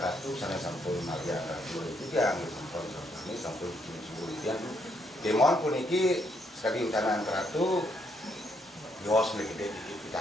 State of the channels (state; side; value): normal; both; correlation 0.74